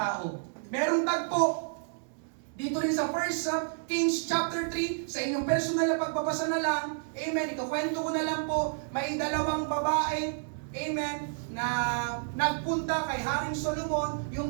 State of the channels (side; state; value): left; silent; digital silence